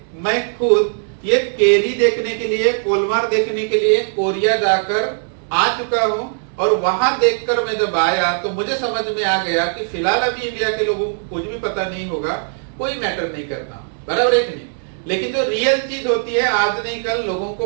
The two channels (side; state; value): left; silent; 67 dB below the other